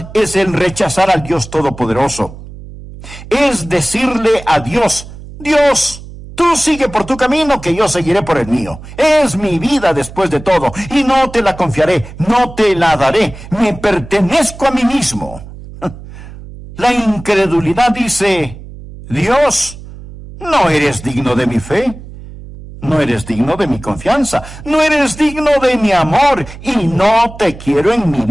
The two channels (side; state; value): right; noise; hum, 15 dB below the sound